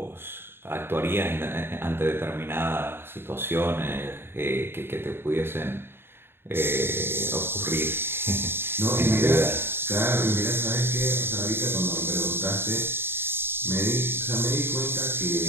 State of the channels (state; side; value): late; left; 0.11 ms